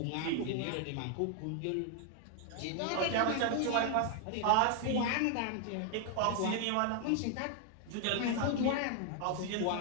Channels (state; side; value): different; both; correlation 0.01